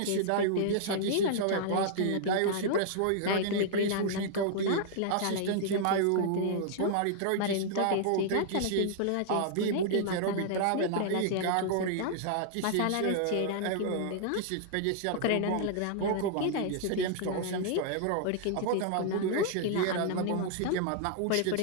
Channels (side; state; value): both; different; correlation -0.01